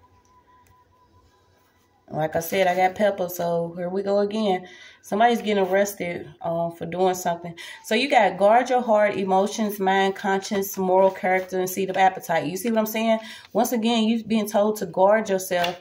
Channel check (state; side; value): identical; both; correlation 1.00